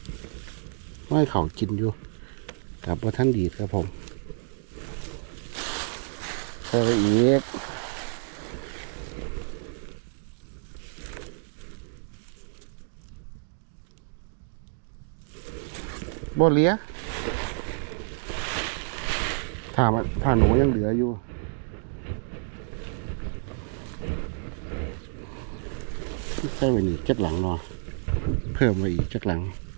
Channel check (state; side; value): silent; left; 59 dB below the other